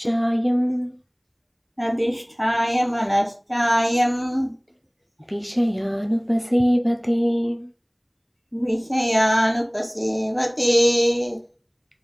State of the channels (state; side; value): identical; both; correlation 1.00